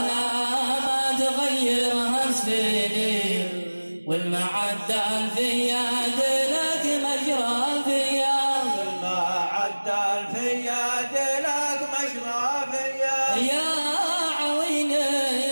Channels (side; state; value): both; inverted; correlation -1.00